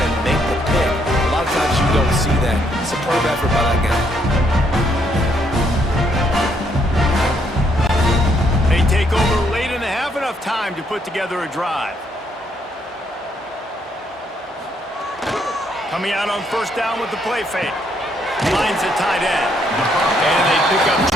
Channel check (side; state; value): both; normal; correlation 0.72